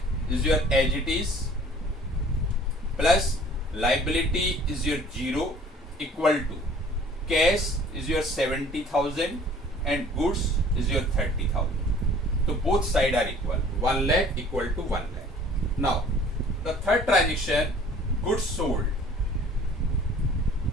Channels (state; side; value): normal; both; correlation 0.52